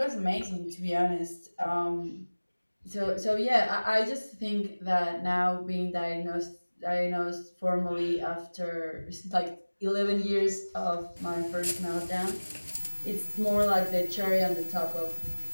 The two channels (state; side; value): inverted; both; correlation -1.00